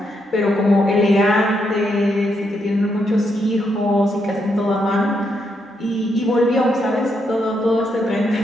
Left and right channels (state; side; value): normal; both; correlation 0.79